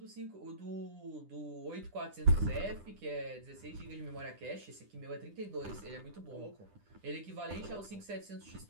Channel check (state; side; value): late; left; 10 ms